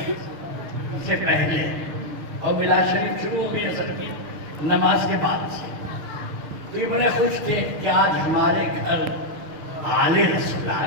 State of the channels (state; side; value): late; left; 6.8 ms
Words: سے پہلے، اور میلاد شریف شروع ہو گئی عصر کی نماز کے بعد سے، تو یہ بڑے خوش تھے کہ آج ہمارے گھر آل رسول